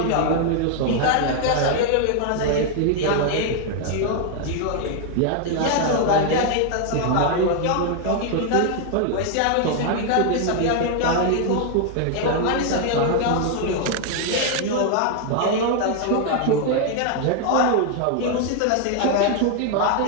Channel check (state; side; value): different; both; correlation 0.00